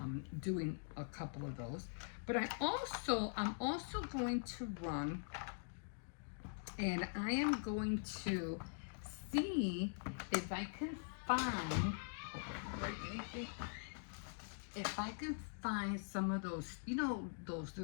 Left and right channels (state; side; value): silent; right; digital silence